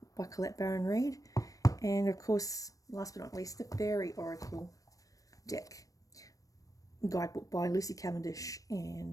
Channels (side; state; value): right; late; 0.16 ms